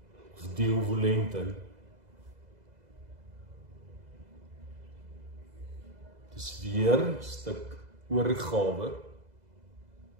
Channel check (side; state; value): left; late; 2.0 ms